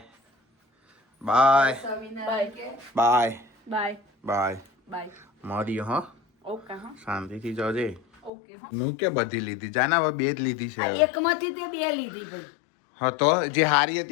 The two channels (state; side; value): drops out; right; at 8.3 s